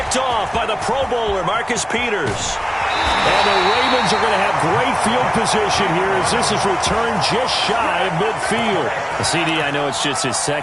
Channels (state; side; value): identical; both; correlation 1.00